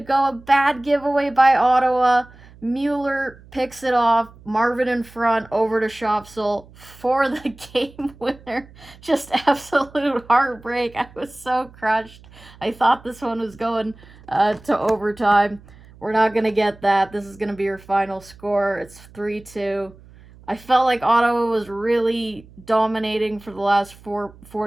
a bad giveaway by Ottawa. Mueller picks it off. Marvin in front, over to Shopsel for the game winner. Just absolute heartbreak. I was so crushed. I thought this one was going to overtime. We're not going to get that. This is going to be your final score. It's 3-2. I felt like Ottawa was really dominating for the last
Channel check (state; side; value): noise; right; hum, 23 dB below the sound